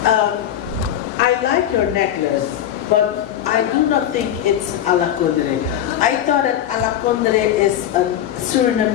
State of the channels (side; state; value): right; quieter; 10.9 dB